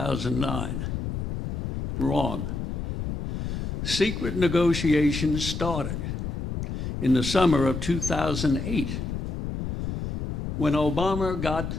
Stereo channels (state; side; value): noise; left; rumble, 4 dB below the sound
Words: Wrong. Secret negotiations started in the summer of 2008 when Obama got